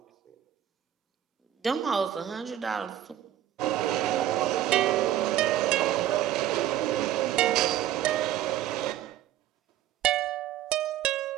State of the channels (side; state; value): left; quieter; 12.0 dB